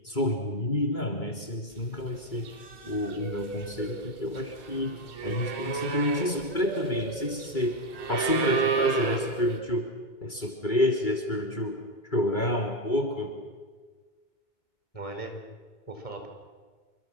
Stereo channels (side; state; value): right; late; 2.3 ms